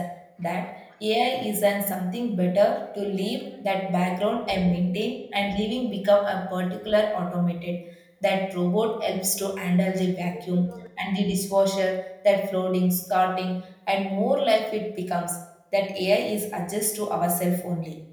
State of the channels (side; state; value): both; identical; correlation 1.00